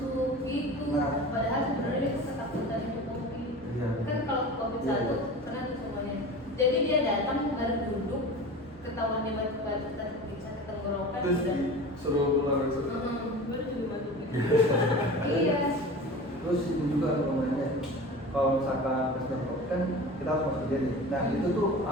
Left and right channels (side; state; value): both; normal; correlation 0.35